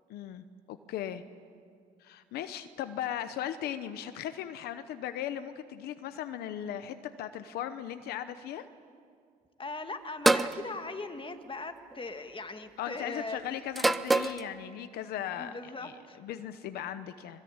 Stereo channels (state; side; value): normal; both; correlation 0.60